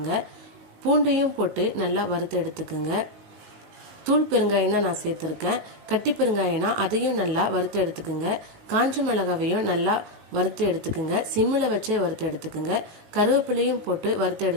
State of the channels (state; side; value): late; left; 18 ms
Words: பூண்டையும் போட்டு நல்லா வறுத்து எடுத்துக்குங்க. தூள் பெருங்காயம் தான் நான் சேர்த்துருக்கேன். கட்டி பெருங்காயம்னா அதையும் நல்லா வறுத்து எடுத்துக்குங்க. காஞ்ச மிளகாவையும் நல்லா வறுத்து எடுத்துக்குங்க. சிம்மில் வச்சே வறுத்து எடுத்துக்குங்க. கருவேப்பிலையும் போட்டு வறுத்து